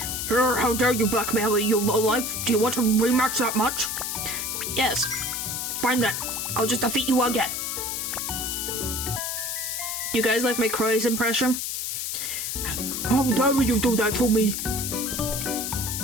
How dare you blackmail me, you lowlife? Do you want to rematch that much? Yes. Fine then. I'll just defeat you again. You guys like my Crois impression? How dare you do that to me?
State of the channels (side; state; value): left; noise; hiss, 3 dB below the sound